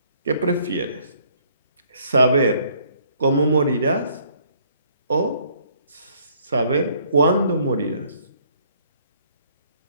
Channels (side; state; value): both; inverted; correlation -0.63